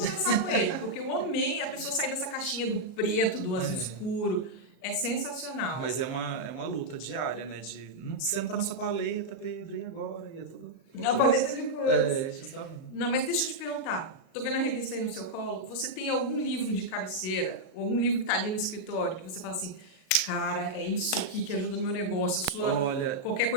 com ele, porque eu amei a pessoa sair dessa caixinha do preto, do azul É. escuro. É sensacional. Mas é uma luta diária, né? Você não tá na sua paleta, Pedro, e agora? E é tudo. A paleta de cores. É, justamente. Não, mas deixa eu te perguntar. Tô vendo a revista aí no seu colo. Você tem algum livro de cabeceira, ou algum livro que tá ali no escritório, que você fala assim, cara, é isso aqui que ajuda no meu negócio. Olha, Qualquer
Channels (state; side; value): late; right; 37 ms